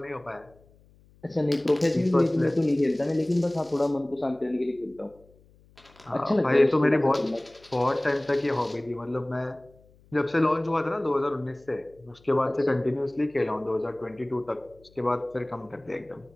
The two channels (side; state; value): left; noise; hum, 29 dB below the sound